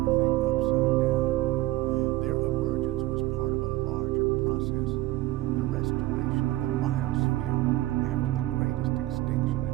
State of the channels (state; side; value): quieter; left; 17.4 dB